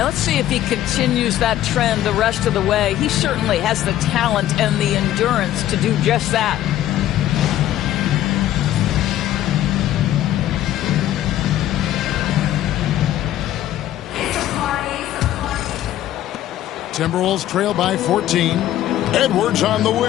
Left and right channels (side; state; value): right; quieter; 12.9 dB